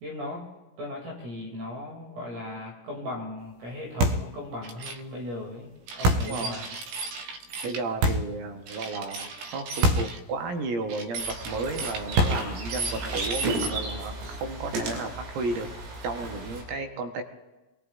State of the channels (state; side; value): late; left; 17 ms